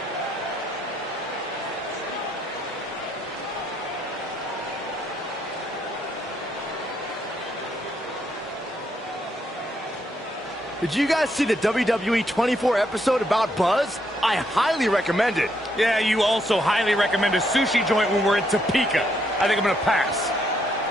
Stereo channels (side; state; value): both; normal; correlation 0.75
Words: Did you guys see the WWE 24 episode about Buzz? I highly recommend it. Yeah, you also highly recommend a sushi joint when we're in Topeka. I think I'm going to pass.